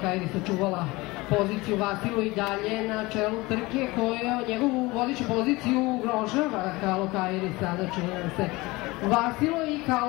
sačuvala poziciju. Vasilo i dalje na čelu trke koja njegovu vodeću poziciju ugrožava. Kalokairi sada čini nam se. Vasilo i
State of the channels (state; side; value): quieter; right; 21.9 dB